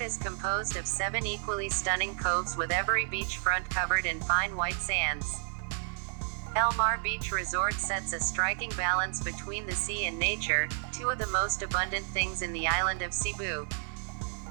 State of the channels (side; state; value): left; silent; 57 dB below the other